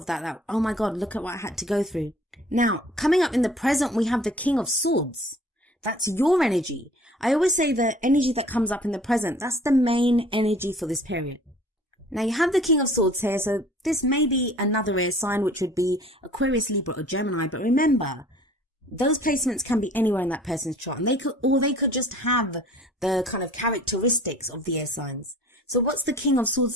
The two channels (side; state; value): both; normal; correlation 0.50